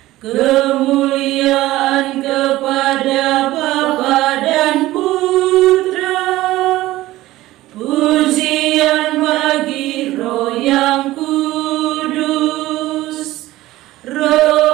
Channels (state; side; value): quieter; left; 16.7 dB